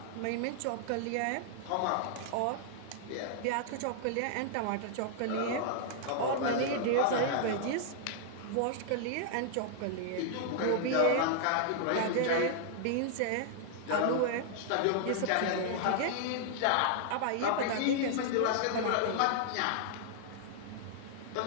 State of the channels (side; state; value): both; different; correlation -0.01